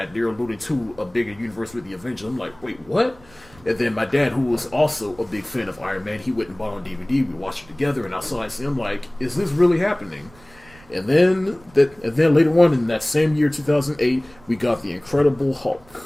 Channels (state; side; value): noise; right; rumble, 26 dB below the sound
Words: they're alluding to a bigger universe with the Avengers. I'm like, wait, what? And then my dad, who was also a big fan of Iron Man, he went and bought it on DVD. We watched it together, and I saw it. I'm like, is this really happening? And then later on in that same year, 2008, we got the Incredible